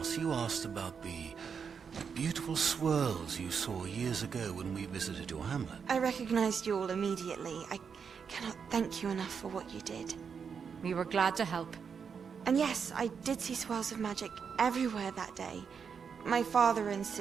you asked about the beautiful swirls you saw years ago when we visited your hamlet. I recognized you all immediately. I cannot thank you enough for what you did. We were glad to help. And yes, I did see swirls of magic everywhere that day. My father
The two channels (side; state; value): left; quieter; 6.4 dB